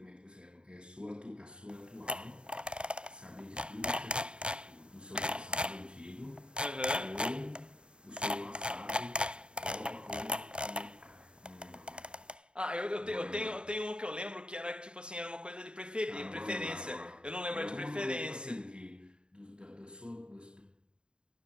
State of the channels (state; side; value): late; left; 0.051 ms